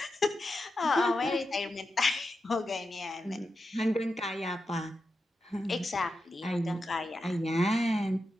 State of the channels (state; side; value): normal; both; correlation 0.89